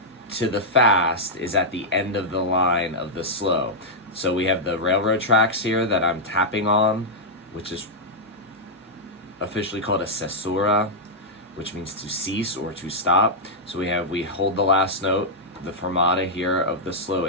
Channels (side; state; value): both; normal; correlation -0.07